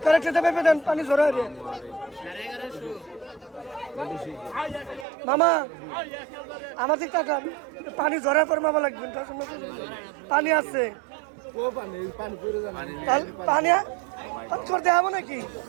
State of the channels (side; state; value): left; drops out; at 5.1 s